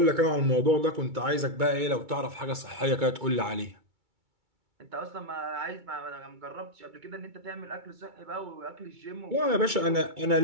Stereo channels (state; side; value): late; left; 2.2 ms